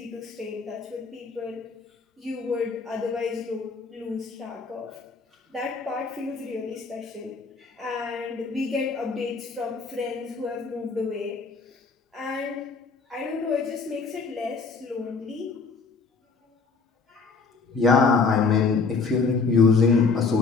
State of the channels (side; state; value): right; quieter; 4.7 dB